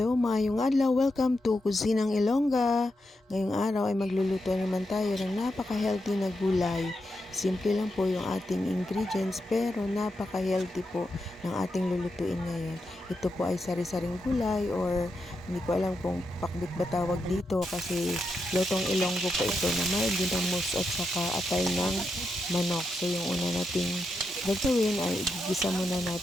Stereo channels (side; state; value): both; normal; correlation 0.85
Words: maayong adlaw. Welcome to Kusinang Ilongga. Ngayong araw ay magluluto naman tayo ng napaka-healthy na gulay. Simple lang po yung ating ingredients pero napaka-healthy po ng ating lulutuin ngayon. Ito po ay sari-saring gulay or hindi ko alam kung pakbit ba tawag dito kasi lutong Ilonggo po ito na may ginamos at saka atay ng manok. So yung una nating gagawin ay igigisa muna